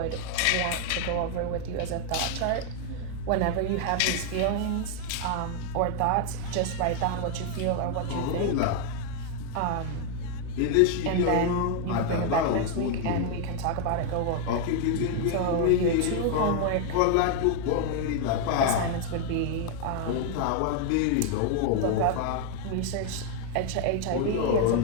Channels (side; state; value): both; different; correlation 0.00